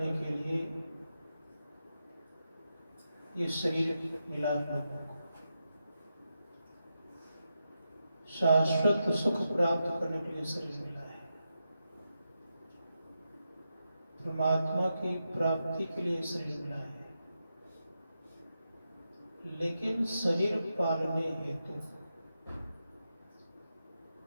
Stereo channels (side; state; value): both; inverted; correlation -0.87